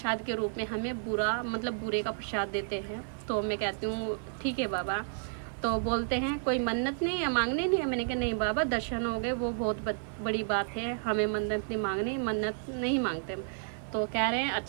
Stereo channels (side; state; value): left; silent; digital silence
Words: के रूप में हमें बूरे का प्रसाद देते हैं। तो मैं कहती हूँ ठीक है बाबा। तो बोलते हैं कोई मन्नत नहीं है, मांगने नहीं है। मैंने कहा नहीं बाबा, दर्शन हो गए, वो बहुत बड़ी बात है, हमें मन्नत नहीं मांगनी, मन्नत नहीं मांगते। तो कह रहे हैं